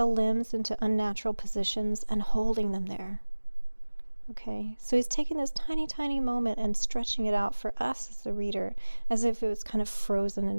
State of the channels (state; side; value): inverted; both; correlation -1.00